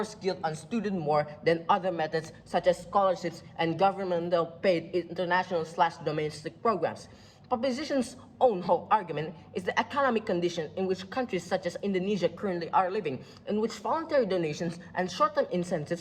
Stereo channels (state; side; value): identical; both; correlation 1.00